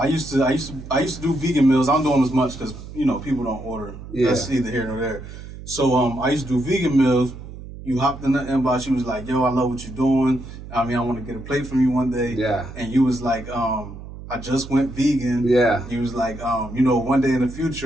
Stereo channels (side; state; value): right; noise; hum, 13 dB below the sound